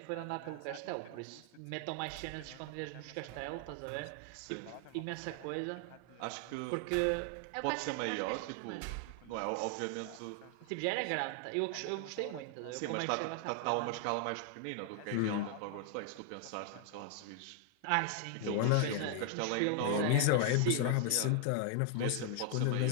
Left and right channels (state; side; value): different; both; correlation 0.00